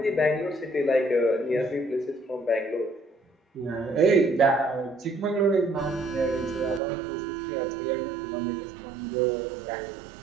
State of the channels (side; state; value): left; drops out; at 6.8 s